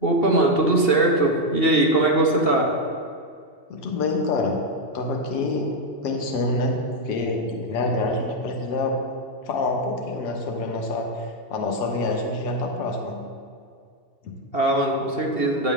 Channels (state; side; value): late; right; 2.7 ms